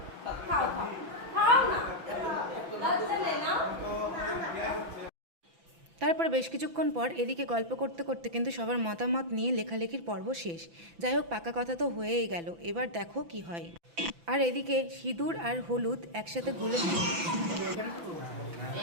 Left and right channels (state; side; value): late; left; 5.9 ms